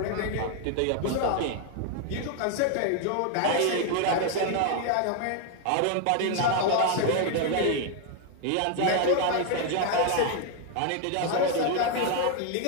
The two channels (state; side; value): different; both; correlation 0.01